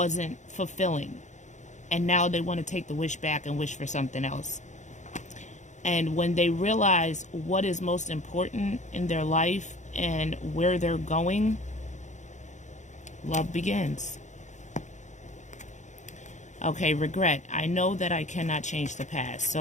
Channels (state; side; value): late; right; 0.35 ms